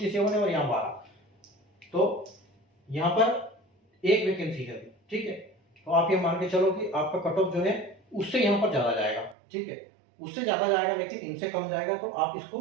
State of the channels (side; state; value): left; drops out; at 9.3 s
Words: है और यहाँ 12, तो यहाँ पर एक वैकेंसी है। ठीक है, तो आप ये मान के चलो कि आपका कट ऑफ जो है उससे यहाँ पर ज्यादा जाएगा। ठीक है, उससे ज्यादा जाएगा लेकिन इनसे कम जाएगा, तो आप इसको